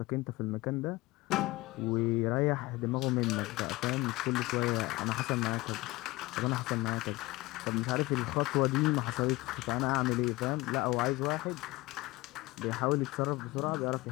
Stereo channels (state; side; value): quieter; right; 20.6 dB